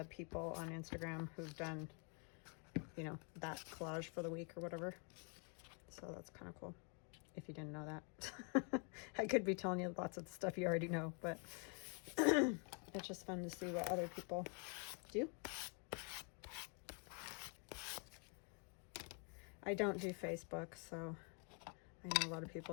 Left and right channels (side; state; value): right; quieter; 38.2 dB